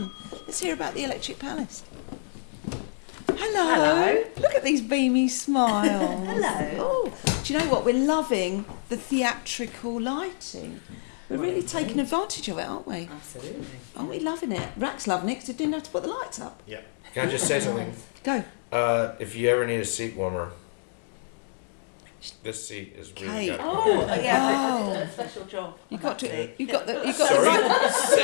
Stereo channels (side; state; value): right; silent; digital silence